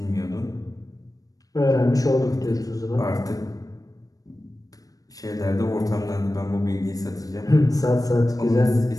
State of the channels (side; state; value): right; late; 0.17 ms